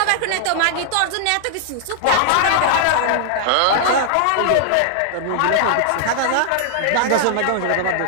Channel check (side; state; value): both; different; correlation -0.01